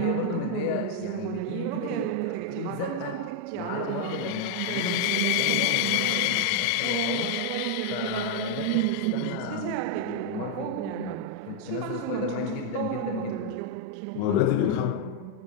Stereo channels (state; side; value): different; both; correlation 0.00